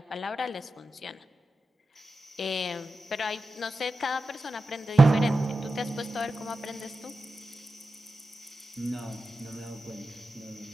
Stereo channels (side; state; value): both; normal; correlation 0.92